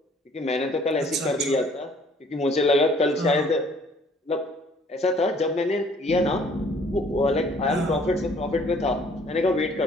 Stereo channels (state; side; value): normal; both; correlation 0.58